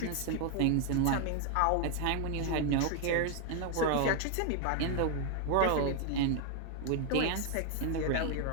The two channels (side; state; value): both; different; correlation 0.00